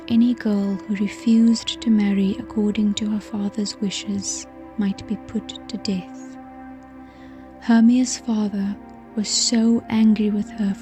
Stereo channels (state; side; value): identical; both; correlation 1.00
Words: any girl who refused to marry according to her father's wishes might be put to death. Hermia's father was so angry with her